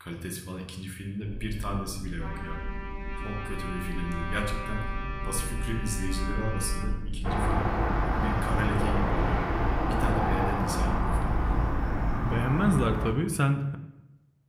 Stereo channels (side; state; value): both; identical; correlation 1.00